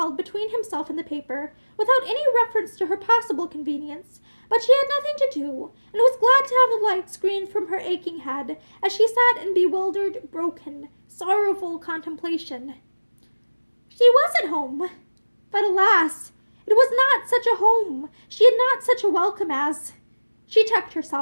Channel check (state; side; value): inverted; both; correlation -1.00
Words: between himself and the paper, without any reference to her possible convenience, but she had nothing to do, and was glad to have the light screened from her aching head, as she sat in bewildered, broken, sorrowful contemplation. She was at home, but alas, it was not such a home. She had not such a welcome as— She checked